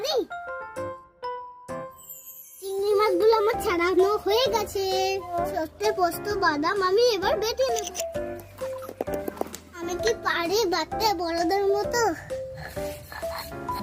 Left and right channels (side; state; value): both; identical; correlation 1.00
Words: চিংড়ি মাছগুলো আমার ছাড়ানো হয়ে গেছে। সর্ষে পোস্ত বাদাম আমি এবার বেটে নেব। আমি কি পারি বাটতে বড়দের মতো?